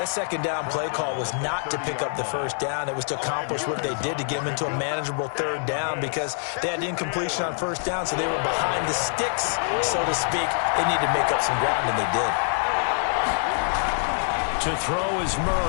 second down play call was not to pick up the first down. It was to accomplish what they did to get them into a manageable 3rd down, because they had incompletion on 1st down, so they were behind the sticks, so to speak. They needed to make up some ground, and they did. To throw is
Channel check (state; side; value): silent; right; digital silence